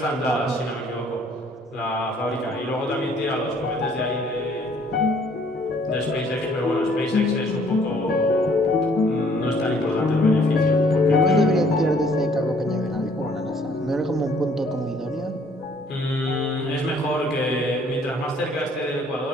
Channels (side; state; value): both; normal; correlation 0.60